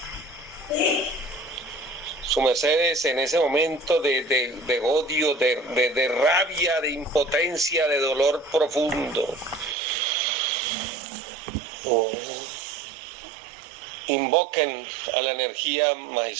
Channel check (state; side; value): drops out; left; at 9.8 s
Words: Su mercedes en ese momento de odio, de rabia, de impotencia, de dolor profundo. Invoquen a la energía